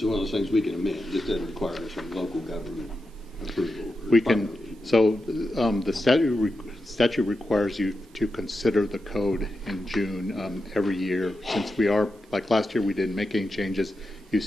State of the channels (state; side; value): normal; both; correlation 0.89